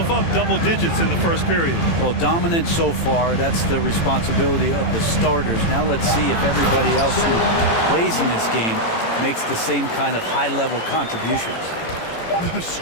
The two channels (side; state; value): right; late; 18 ms